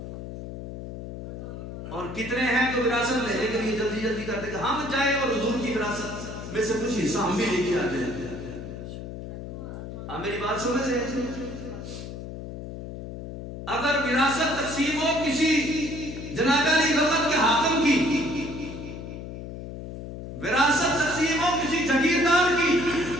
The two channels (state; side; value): noise; left; hum, 9 dB below the sound